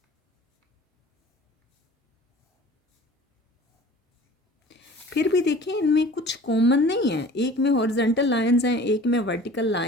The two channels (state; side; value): normal; both; correlation 0.44